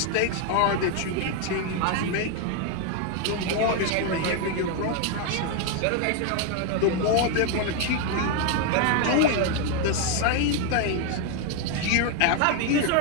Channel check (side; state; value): both; different; correlation 0.01